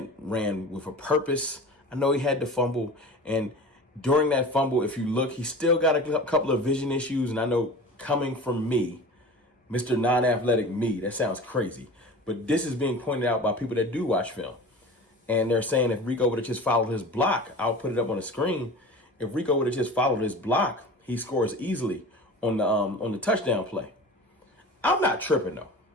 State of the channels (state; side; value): normal; both; correlation 0.36